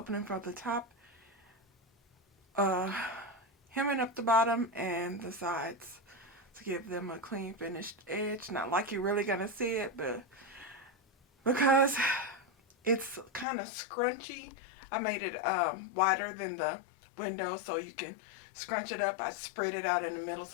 from the top, hemming up the bottom and the sides to give them a clean finished edge. Not like you're really gonna see it, but because it's kind of scrunchy, I made it wider than the window so you can scrunch it up. I spread it out in the middle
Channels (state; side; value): drops out; right; at 13.5 s